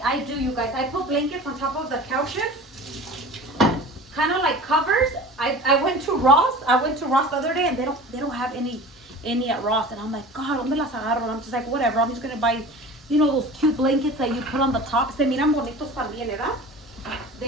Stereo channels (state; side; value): normal; both; correlation 0.38